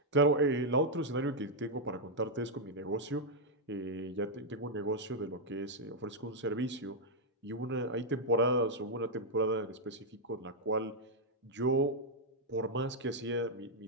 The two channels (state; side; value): normal; both; correlation -0.03